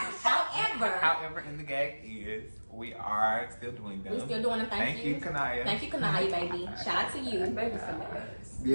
However, in the gag is we are still doing them. We're still doing them. Thank you, Kanaya. Thank you, Kanaya, baby. Shout out to you.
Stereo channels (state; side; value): inverted; both; correlation -1.00